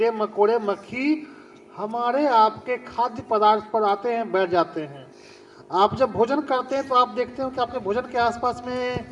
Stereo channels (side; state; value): both; identical; correlation 1.00